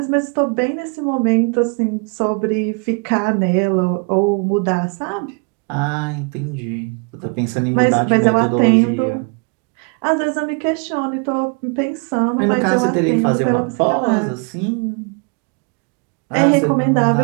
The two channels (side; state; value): left; quieter; 35.4 dB